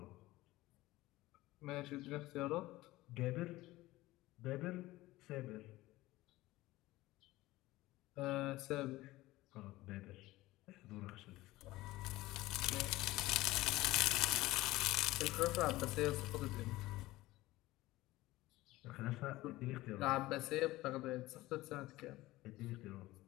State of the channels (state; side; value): quieter; right; 18.1 dB